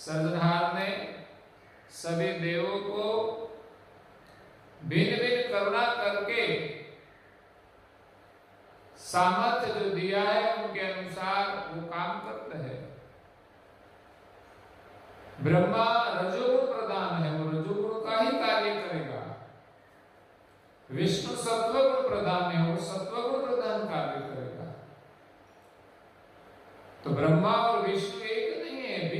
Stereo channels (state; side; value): identical; both; correlation 1.00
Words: ने सभी देवों को भिन्न भिन्न करुणा करके सामर्थ्य जो दिया है उनके अनुसार वो काम करते हैं। ब्रह्मा रजोगुण प्रधान है, वो रजोगुण का ही कार्य करेगा। विष्णु सत्वगुण प्रधान है, वो सत्वगुण प्रधान कार्य करेगा। तो ब्रह्मा और विष्णु एक नहीं है,